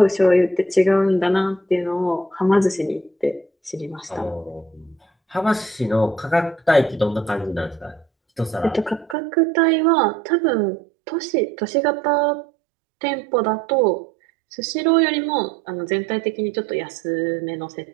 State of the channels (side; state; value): left; drops out; at 9.2 s